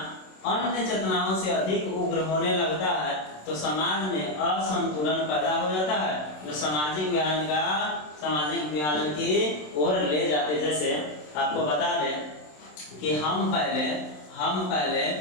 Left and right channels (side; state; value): right; late; 27 ms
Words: अन्य चेतनाओं से अधिक उग्र होने लगता है तो समाज में असंतुलन पैदा हो जाता है, जो सामाजिक विभाजन की ओर ले जाते। जैसे आपको बता दें कि हम पहले